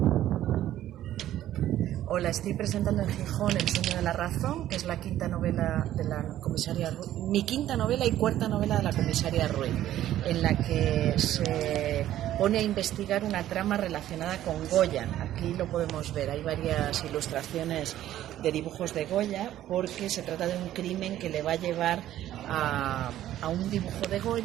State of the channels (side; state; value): left; quieter; 12.9 dB